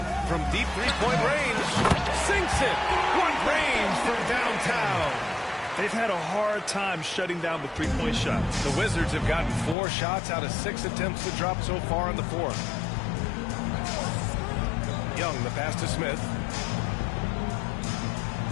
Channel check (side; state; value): right; drops out; at 9.8 s